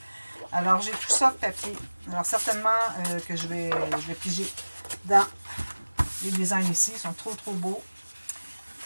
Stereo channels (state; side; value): inverted; both; correlation -1.00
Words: Alors, j'ai tout ça de papier. Alors, certainement que je vais piger dans les designs ici. Ils sont trop beaux.